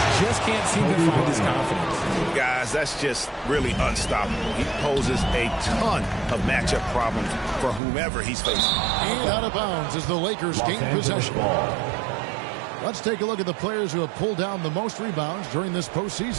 Just can't seem to find his confidence. Guys, that's just really unstoppable. He poses a ton of matchup problems for whomever he's facing. And out of bounds as the Lakers gain possession. Let's take a look at the players who have pulled down the most rebounds during this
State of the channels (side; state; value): left; drops out; at 7.8 s